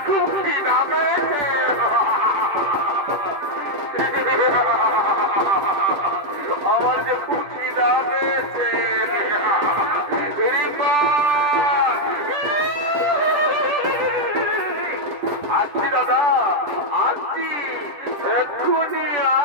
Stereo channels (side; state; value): left; late; 10 ms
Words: খুব খিদা পেয়েছে। আমার যে খুব খিদা পেয়েছে। আসছি দাদা, আসছি, এক্ষুনি